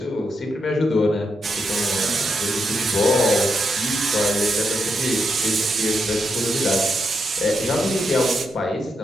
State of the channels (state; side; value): normal; both; correlation 0.82